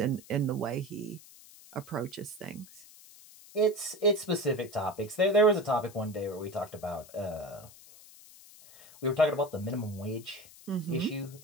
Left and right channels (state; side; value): noise; left; hiss, 21 dB below the sound